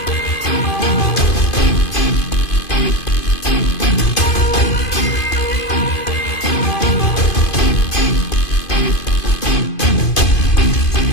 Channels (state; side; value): late; right; 2.5 ms